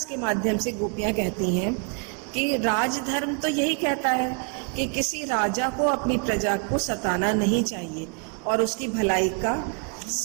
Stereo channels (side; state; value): left; quieter; 39.0 dB